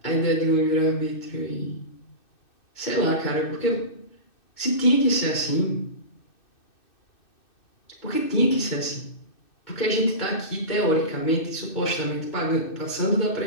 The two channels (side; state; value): right; late; 2.6 ms